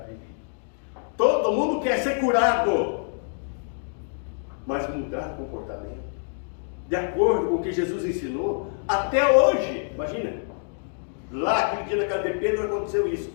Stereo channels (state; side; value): silent; right; 61 dB below the other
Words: vida. Todo mundo quer ser curado, mas mudar o comportamento, de acordo com o que Jesus ensinou, até hoje, imagina, lá aquele dia na casa de Pedro aconteceu isso.